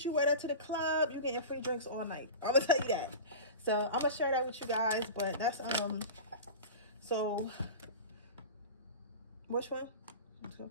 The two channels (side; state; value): both; inverted; correlation -0.31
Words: you wear that to the club, you're getting free drinks all night. I'm going to tell you that. So I'm going to share that with you guys. But that's, so, which one?